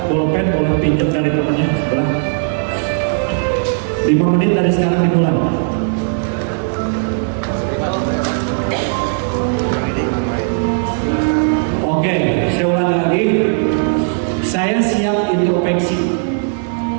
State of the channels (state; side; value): silent; left; 61 dB below the other